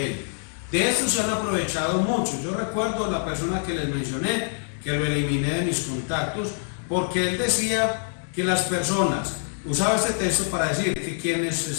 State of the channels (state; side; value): silent; right; digital silence